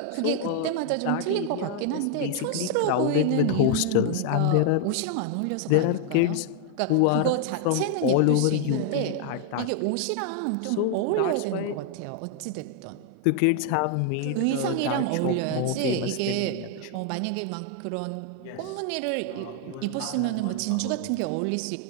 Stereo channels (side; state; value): both; different; correlation 0.00